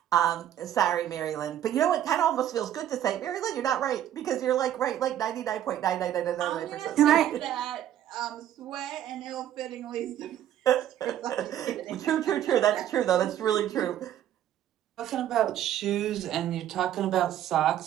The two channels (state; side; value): quieter; left; 11.4 dB